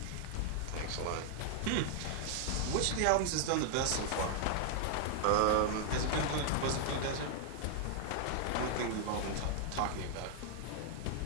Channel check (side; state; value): both; different; correlation 0.00